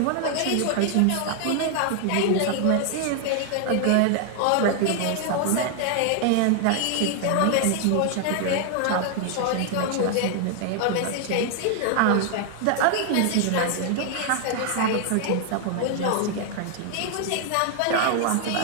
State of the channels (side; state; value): both; different; correlation 0.00